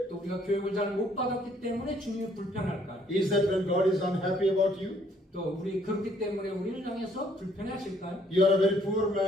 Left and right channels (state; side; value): normal; both; correlation 0.65